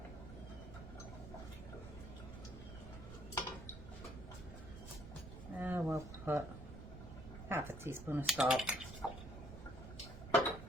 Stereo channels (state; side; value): noise; right; rumble, 11 dB below the sound